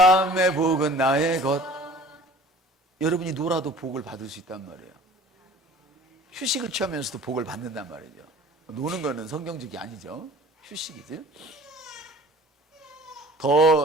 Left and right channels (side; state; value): both; normal; correlation 0.46